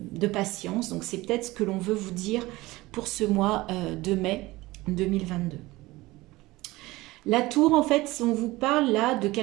patience. Donc c'est peut-être ce que l'on veut vous dire pour ce mois de mai 2022. La tour, en fait, on vous parle là de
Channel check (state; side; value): quieter; left; 19.7 dB